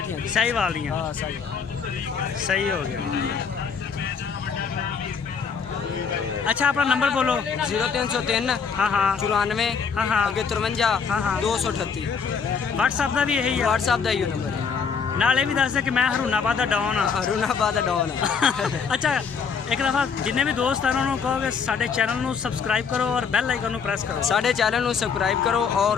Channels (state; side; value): quieter; right; 6.2 dB